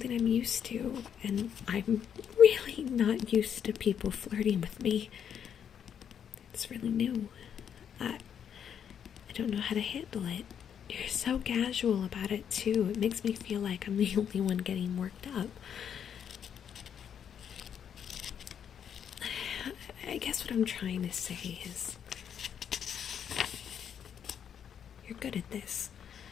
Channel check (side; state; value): right; quieter; 8.4 dB